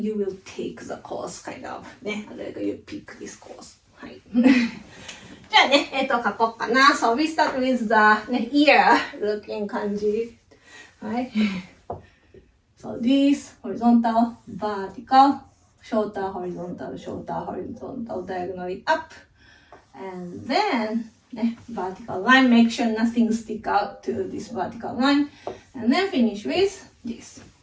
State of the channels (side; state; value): both; identical; correlation 1.00